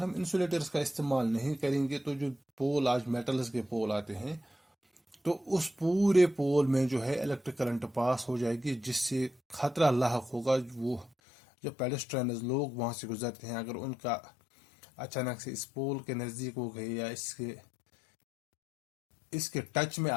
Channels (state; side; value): drops out; right; at 11.1 s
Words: हम इंसुलेटर्स का इस्तेमाल नहीं करेंगे तो जो पोल, आज मेटल्स के पोल आते हैं, तो उस पूरे पोल में जो है इलेक्ट्रिक करंट पास हो जाएगी, जिससे खतरा लाहक होगा। वो जो पेडेस्ट्रियंस लोग वहां से गुजरते हैं, अगर उनका अचानक से इस पोल के नजदीक हो गए या इसके टच में